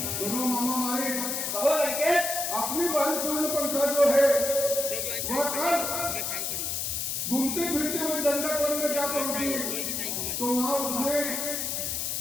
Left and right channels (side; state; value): left; noise; hiss, 1 dB below the sound